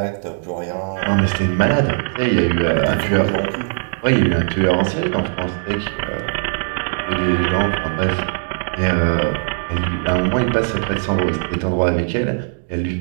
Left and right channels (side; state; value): left; silent; digital silence